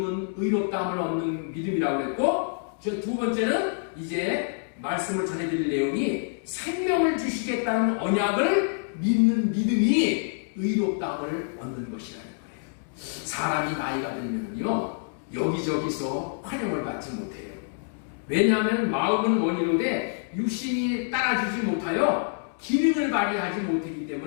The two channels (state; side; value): silent; right; digital silence